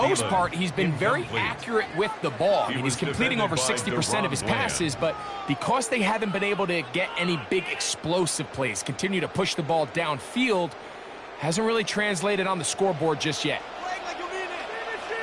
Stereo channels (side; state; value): both; identical; correlation 1.00